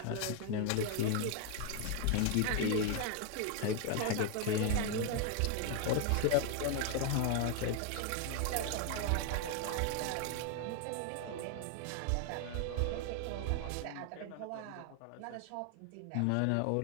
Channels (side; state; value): both; different; correlation 0.00